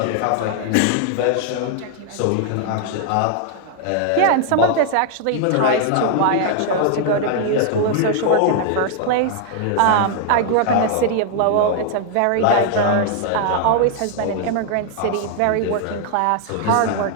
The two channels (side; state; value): both; different; correlation 0.00